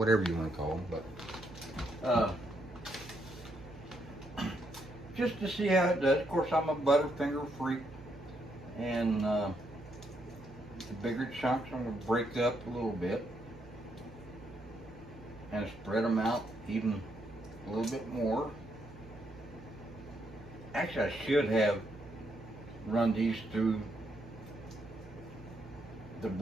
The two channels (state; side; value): noise; right; hum, 18 dB below the sound